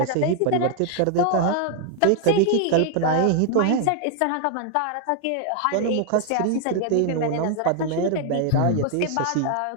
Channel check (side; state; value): both; different; correlation 0.00